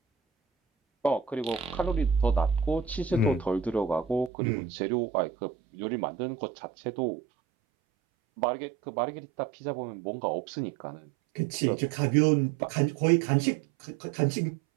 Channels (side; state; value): left; drops out; at 4.3 s